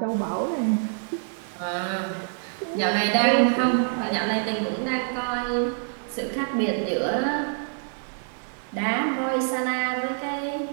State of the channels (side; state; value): left; silent; 61 dB below the other